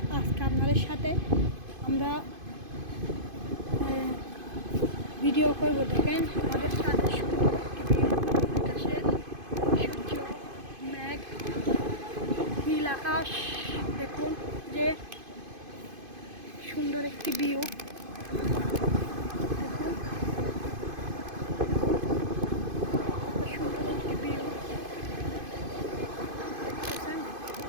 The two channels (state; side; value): late; left; 2.5 ms